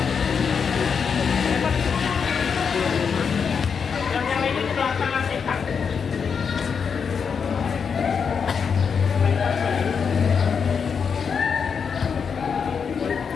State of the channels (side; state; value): right; quieter; 6.3 dB